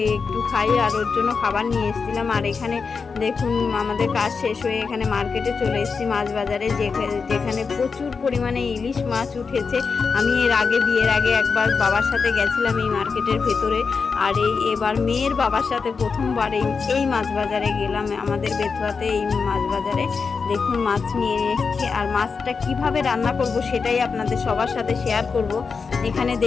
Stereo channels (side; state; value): right; quieter; 5.1 dB